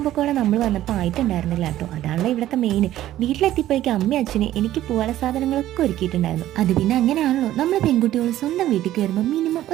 പക്കോട നമ്മൾ വന്നപ്പോൾ ആയിട്ടുണ്ടായിരുന്നില്ല കേട്ടോ. അതാണല്ലോ ഇവിടുത്തെ മെയിൻ. വീട്ടിലെത്തിയപ്പോഴേക്കും അമ്മയും അച്ഛന് എനിക്ക് പോകാനുള്ള സാധനങ്ങളൊക്കെ ഒരുക്കിയിട്ടുണ്ടായിരുന്നു. അത് പിന്നെ അങ്ങനെയാണല്ലോ, നമ്മൾ പെൺകുട്ടികൾ സ്വന്തം വീട്ടിലേക്ക് വരുമ്പോൾ മിനിമം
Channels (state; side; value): quieter; left; 13.6 dB